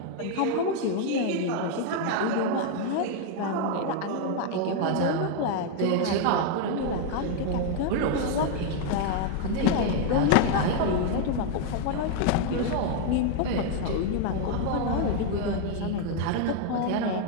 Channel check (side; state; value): both; different; correlation 0.01